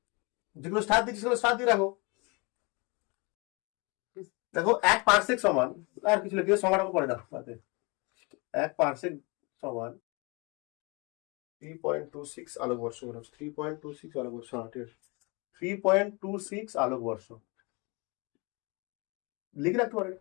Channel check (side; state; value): right; quieter; 28.9 dB